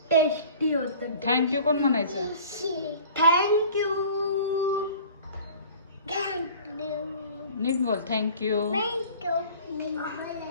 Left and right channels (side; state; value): both; inverted; correlation -0.46